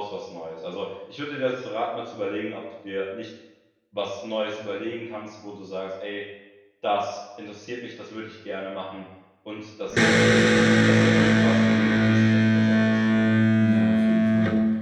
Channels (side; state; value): both; identical; correlation 1.00